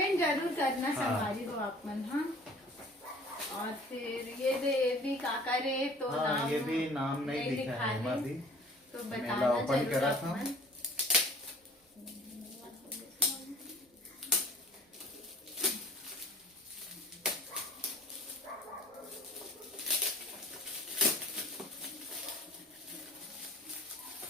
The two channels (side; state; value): both; normal; correlation 0.48